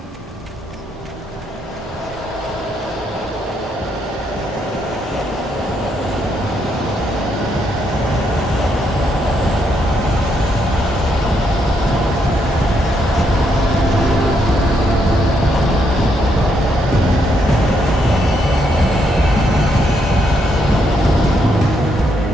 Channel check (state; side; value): normal; both; correlation 0.76